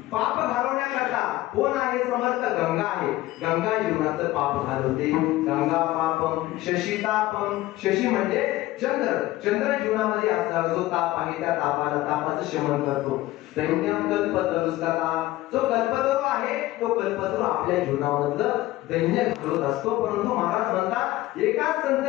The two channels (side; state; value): right; quieter; 17.0 dB